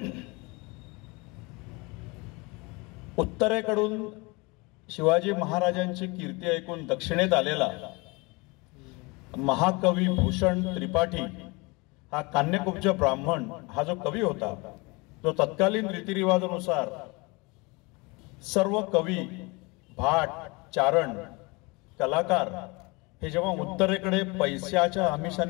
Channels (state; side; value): quieter; right; 26.8 dB